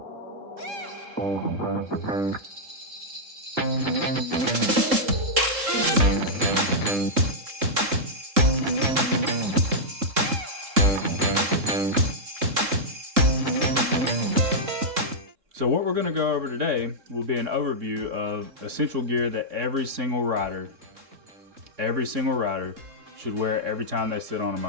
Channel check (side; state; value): left; late; 3.7 ms